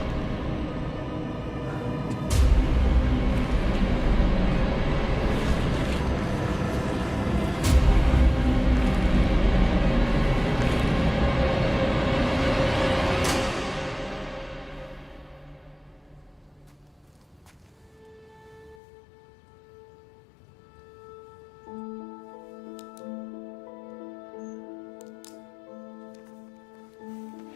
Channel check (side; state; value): right; drops out; at 18.8 s